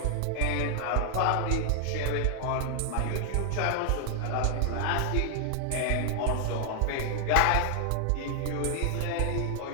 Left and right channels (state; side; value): different; both; correlation 0.00